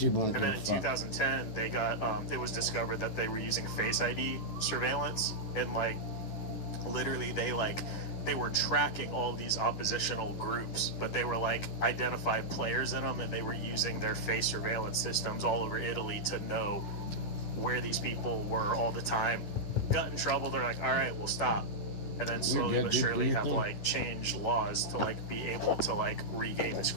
won't give a fuck. In 2010, they got it was discovered that they were using Face ID surveillance, and like literally they were tracking all these oppositional groups, but they were like identified players in them, and they were using their face surveillance systems all over Italy to know where these people were all the time. Got in trouble, they're like, all right, we'll stop. And then slowly but surely have like changed laws to like be able to like regain this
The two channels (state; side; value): late; right; 10 ms